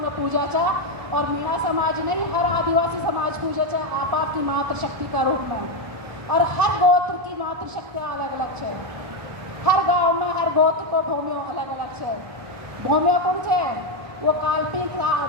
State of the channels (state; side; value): late; left; 1.0 ms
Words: पूजा चा। और मीणा समाज नहीं, हर आदिवासी समाज पूजे चा आप आपकी मातृशक्ति का रूप में। और हर गोत्र की मातृशक्ति अलग अलग है। हर गांव में हर गोत्र को भूमियों अलग अलग है। भूमियों कौन है? वो काल्पनिक